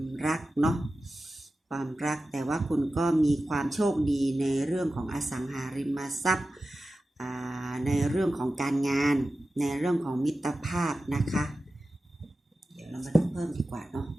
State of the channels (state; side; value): normal; both; correlation 0.94